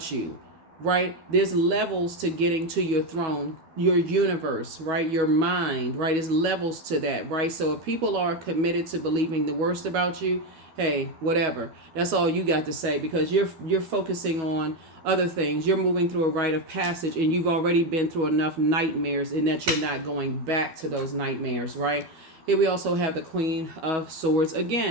you, right? There's levels to getting to your throne, your universe, right? Your mind, right? There's levels to that, right? So if people are committed to believing the worst about you, hey, whatever. That's all you got to say, because you're focusing on other things. You're moving through a rite of passage, and you've already been through enough nightmares, and that you're not going back to those nightmares, right? Here we also have the Queen of Swords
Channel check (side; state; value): left; late; 12 ms